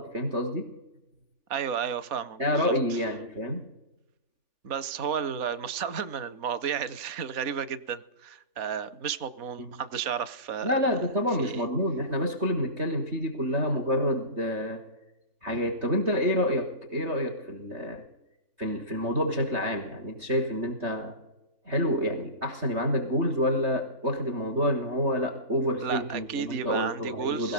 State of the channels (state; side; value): late; left; 3.4 ms